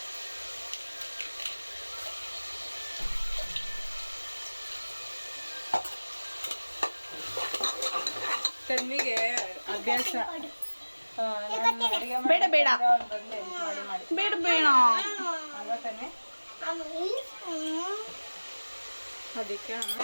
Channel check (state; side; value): inverted; both; correlation -1.00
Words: ತನ್ವಿಗೆ ಅಭ್ಯಾಸ ಬೇಡ ಬೇಡ ಮಾಡಿ ಬೇಡ ಬೇಡ ಅಲ್ವಾ ತನ್ವಿ? ಅದಕ್ಕೆ